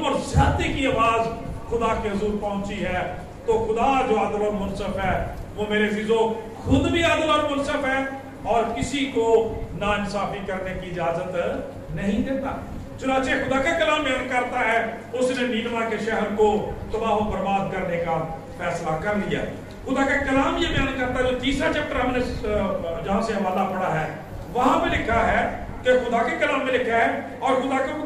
اور زیادتی کی آواز خدا کے حضور پہنچی ہے، تو خدا جو عادل اور منصف ہے وہ میرے عزیزو خود بھی عادل اور منصف ہے اور کسی کو ناانصافی کرنے کی اجازت نہیں دیتا۔ چنانچہ خدا کا کلام بیان کرتا ہے اس نے نینوا کے شہر کو تباہ و برباد کرنے کا فیصلہ کر لیا۔ خدا کا کلام یہ بیان کرتا ہے جو تیسرا چیپٹر ہم نے جہاں سے حوالہ پڑھا ہے وہاں پہ لکھا ہے کہ خدا کے کلام میں لکھا ہے اور خدا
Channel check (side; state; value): both; identical; correlation 1.00